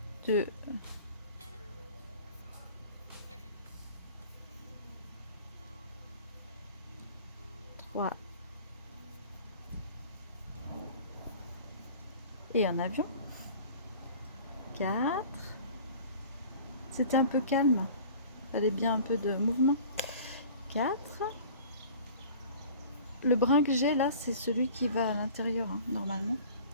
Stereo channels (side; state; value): both; inverted; correlation -0.44